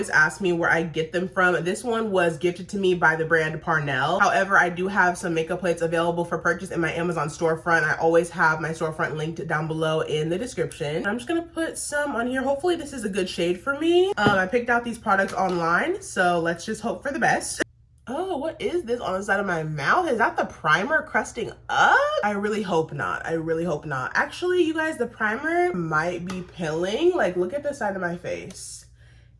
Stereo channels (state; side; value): identical; both; correlation 1.00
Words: ask me where I get them from. This one was gifted to me by the brand Parnell. However, I do have some makeup plates available for purchase in my Amazon storefront. I always have my storefront linked down below in the description. I'm just going to put some on here. Hopefully this is a good shade for me. I picked out these products online, so let's just hope for the best. Oh, what is this on the side of my mouth? Is that the primer crusting up? I really hope not. I really hope not. Actually, you guys, the primer might be pilling. Like, look at the side of my face.